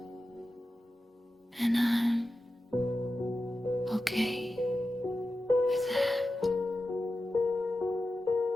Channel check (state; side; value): normal; both; correlation 0.92